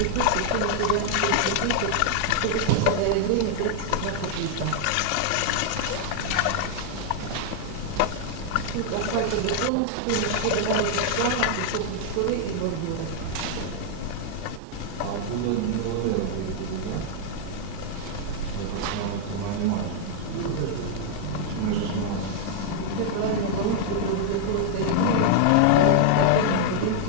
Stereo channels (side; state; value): both; different; correlation -0.01